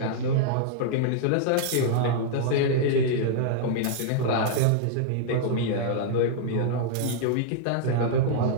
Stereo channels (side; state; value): both; different; correlation -0.01